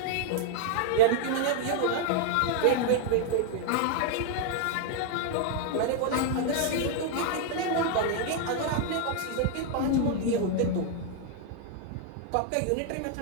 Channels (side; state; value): both; different; correlation 0.00